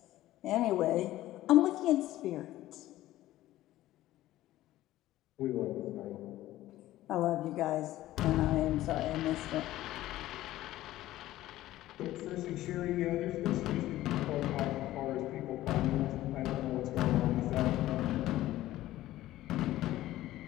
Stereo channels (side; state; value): right; quieter; 15.2 dB